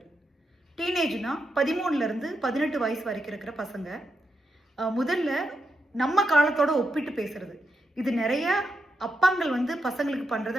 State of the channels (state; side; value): normal; both; correlation 0.84